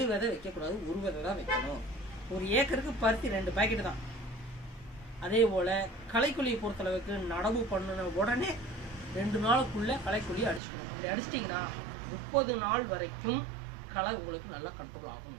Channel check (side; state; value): left; drops out; at 10.6 s